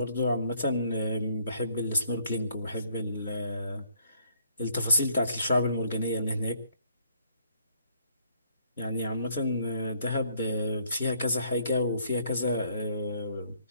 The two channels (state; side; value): inverted; both; correlation -0.66